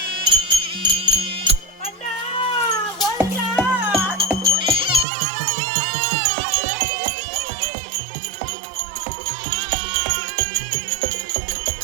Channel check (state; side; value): drops out; left; at 5.1 s